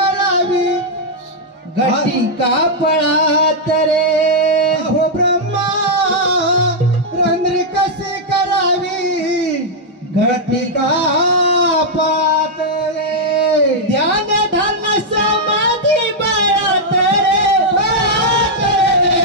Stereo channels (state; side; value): normal; both; correlation -0.04